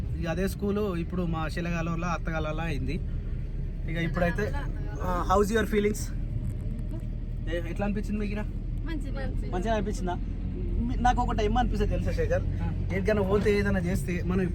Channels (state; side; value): identical; both; correlation 1.00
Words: ఇక అదే స్కూలు ఇప్పుడు మా శిలగాలలో అత్తగాలలో అయింది. ఇక ఇప్పుడైతే హౌస్ యువర్ ఫీలింగ్స్? ఎట్లా అనిపించింది మీకు? మంచిగా అనిపించిందా? నాకు ఒకటి ఏమనిపిస్తుంది తెలుసా శేఖర్, ఎక్కడికైనా పోతే ఏదైనా చేస్తే మనం